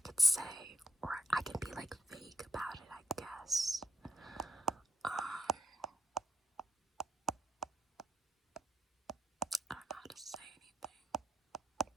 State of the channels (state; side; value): normal; both; correlation 0.80